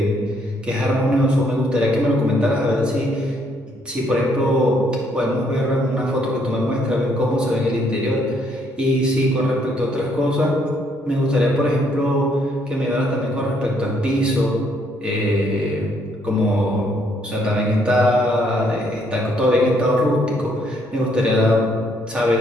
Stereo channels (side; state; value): both; normal; correlation 0.70